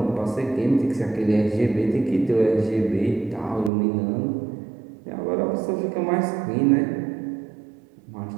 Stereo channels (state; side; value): drops out; left; at 3.7 s